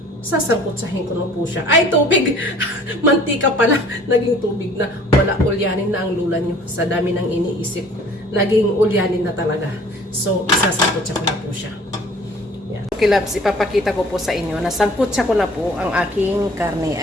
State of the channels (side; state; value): both; normal; correlation 0.51